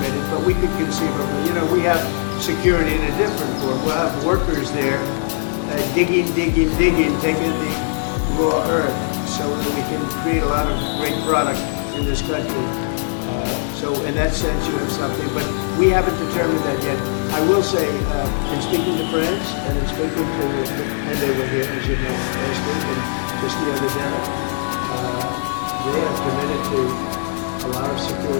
but we could conceivably. We have security in a different form. We'll have workers there digging, taking the raw earth so that we can create a lot of great product in this country. So in that sense, you have something, but we haven't determined that yet. I will say, in speaking to France and in speaking to, and they were here, as you know, last week and just the other day, they have committed to a lot of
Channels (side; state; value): right; silent; digital silence